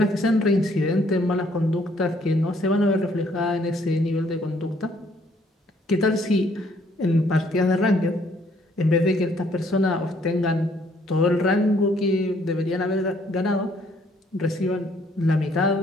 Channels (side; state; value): both; normal; correlation 0.65